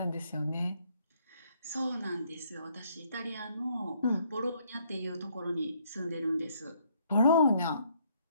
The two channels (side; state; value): both; inverted; correlation -0.68